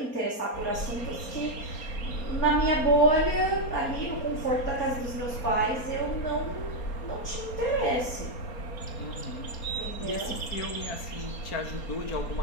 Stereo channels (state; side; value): late; right; 4.2 ms